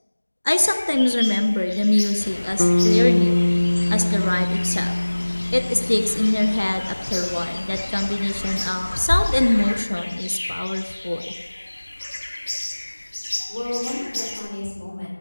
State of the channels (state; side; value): inverted; both; correlation -1.00